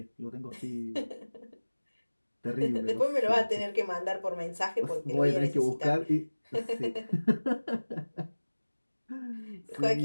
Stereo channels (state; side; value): inverted; both; correlation -1.00